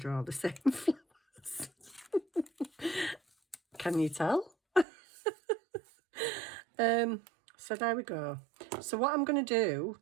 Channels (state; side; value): drops out; left; at 4.9 s